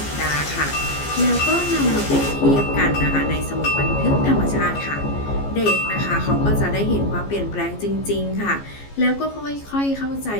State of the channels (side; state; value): right; late; 14 ms